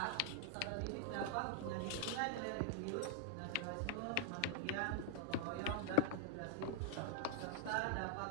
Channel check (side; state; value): both; different; correlation 0.00